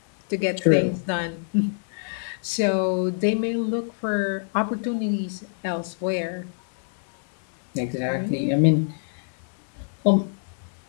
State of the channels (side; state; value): right; silent; 61 dB below the other